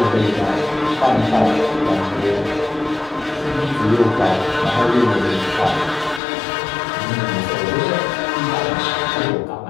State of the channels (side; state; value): right; drops out; at 6.2 s